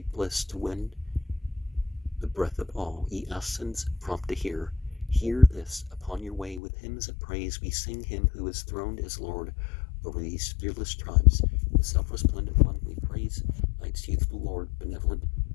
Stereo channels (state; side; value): drops out; right; at 6.6 s